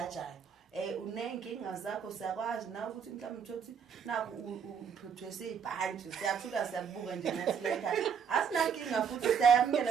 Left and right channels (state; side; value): quieter; left; 7.0 dB